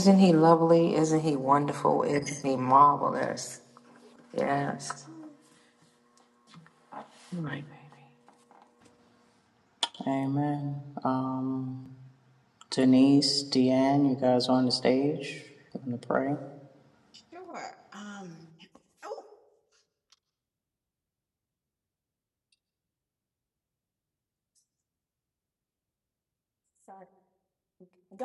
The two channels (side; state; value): both; identical; correlation 1.00